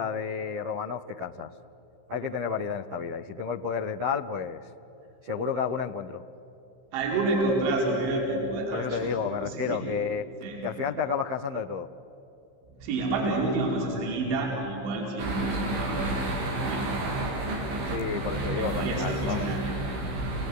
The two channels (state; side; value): late; left; 16 ms